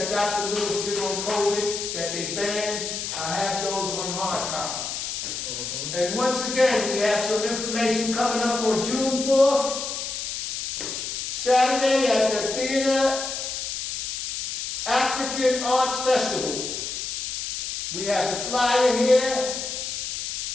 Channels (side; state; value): left; noise; hiss, 4 dB below the sound